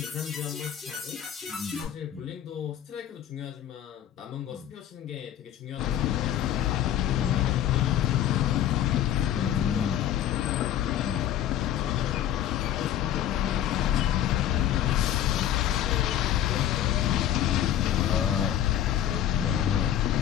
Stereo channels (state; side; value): quieter; right; 11.1 dB